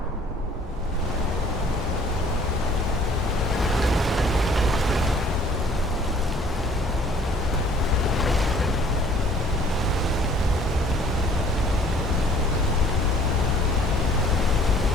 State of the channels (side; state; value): both; normal; correlation 0.55